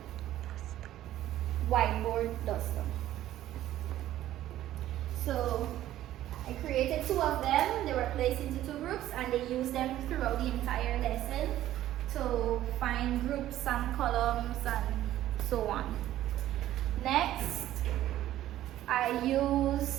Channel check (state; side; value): quieter; left; 13.4 dB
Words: whiteboard duster. So I created 2 of them. They were placed into 2 groups and they used them throughout the entire lesson to find groups and columns and so on. Next, I